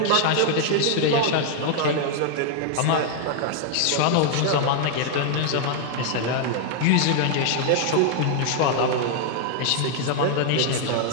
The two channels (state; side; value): different; both; correlation 0.00